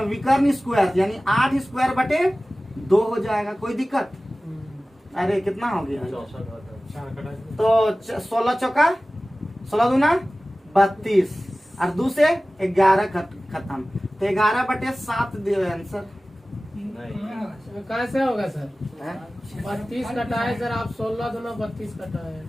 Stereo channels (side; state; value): both; normal; correlation 0.97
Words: विकर्ण स्क्वायर यानी 8 स्क्वायर बटे 2 हो जाएगा। कोई दिक्कत? अरे कितना हो गया तो 16 चौका 16 दूना 32 और 2 से 11 खत्म। तो 11/7 दियो आंसर। कैसे होगा सर? 32 कटाए सर, आप 16 दूना 32 कटाए।